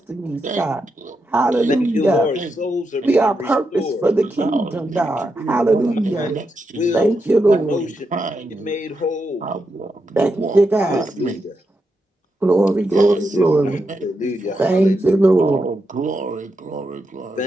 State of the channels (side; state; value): both; normal; correlation 0.85